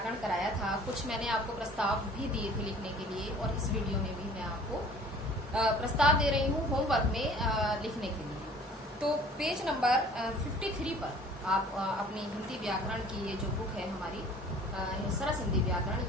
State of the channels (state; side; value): normal; both; correlation 0.50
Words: कराया था, कुछ मैंने आपको प्रस्ताव भी दिए थे लिखने के लिए, और इस वीडियो में भी मैं आपको प्रस्ताव दे रही हूँ होमवर्क में लिखने के लिए। तो पेज नंबर 53 पर आप अपनी हिंदी व्याकरण की ये जो बुक है हमारी सरस हिंदी व्याकरण,